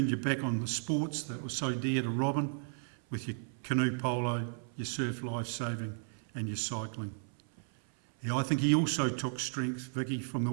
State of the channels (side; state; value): left; silent; 55 dB below the other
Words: your back on the sports that were so dear to Robin, with your canoe polo, your surf lifesaving and your cycling. Yeah, I think he also took strength, Vicky, from the